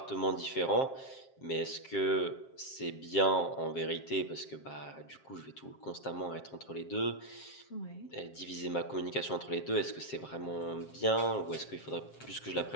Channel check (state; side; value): late; right; 7.5 ms